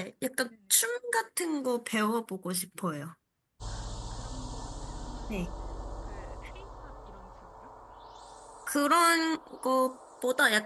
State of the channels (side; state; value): both; identical; correlation 1.00